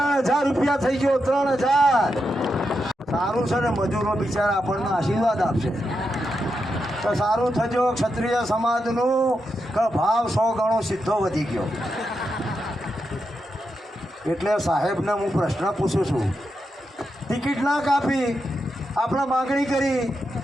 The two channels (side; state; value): both; normal; correlation 0.86